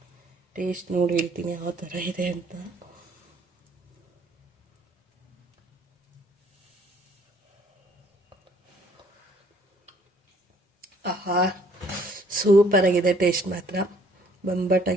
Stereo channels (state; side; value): normal; both; correlation 0.60